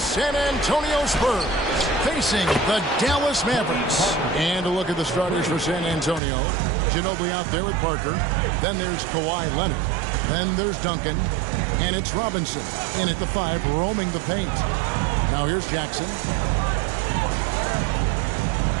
Antonio Spurs facing the Dallas Mavericks. And a look at the starters for San Antonio. Ginobili out there with Parker. Then there's Kawhi Leonard. Then there's Duncan. And it's Robinson in at the 5, roaming the paint. Now here's Jackson.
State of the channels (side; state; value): left; drops out; at 6.2 s